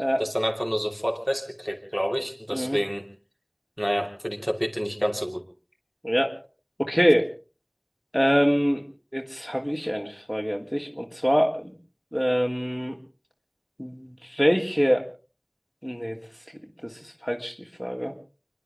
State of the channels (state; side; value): identical; both; correlation 1.00